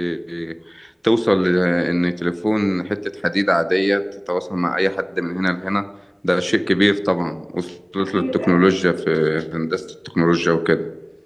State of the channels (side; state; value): both; identical; correlation 1.00